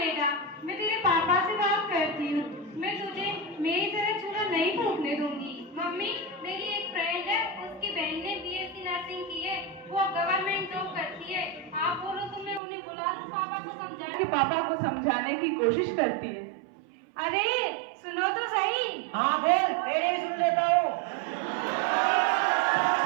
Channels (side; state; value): left; drops out; at 12.6 s